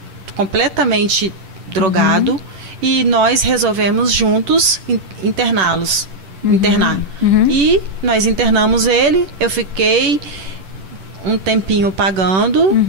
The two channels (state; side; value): late; left; 10 ms